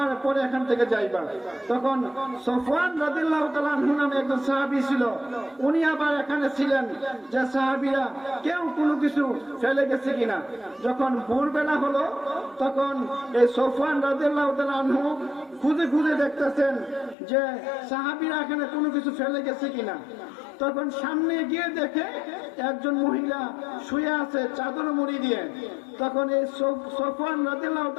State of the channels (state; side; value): drops out; right; at 17.2 s